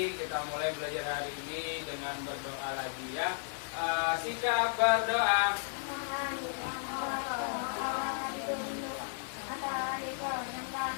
kita mulai belajar hari ini dengan berdoa lagi ya. Sikap berdoa.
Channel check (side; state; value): right; silent; digital silence